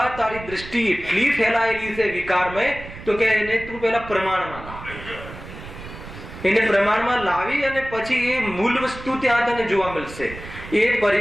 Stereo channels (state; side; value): noise; right; rumble, 14 dB below the sound